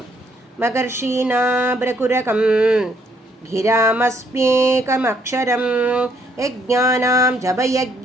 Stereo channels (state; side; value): normal; both; correlation 0.69